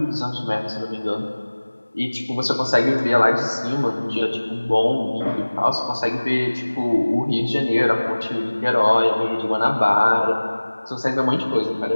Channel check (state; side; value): inverted; both; correlation -1.00